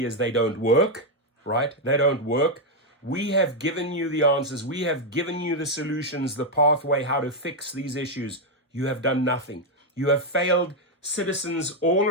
they don't work, right? They don't work. We have given you the answers. We have given you the solutions, the pathway, how to fix these issues. You have done nothing. You have failed citizens all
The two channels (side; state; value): both; normal; correlation 0.02